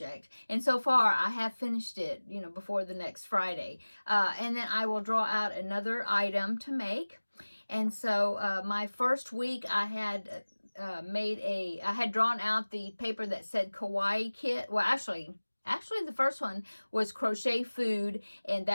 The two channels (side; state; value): both; inverted; correlation -1.00